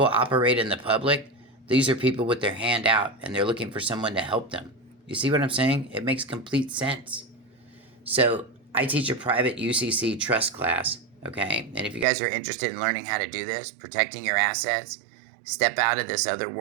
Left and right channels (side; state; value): left; drops out; at 12.1 s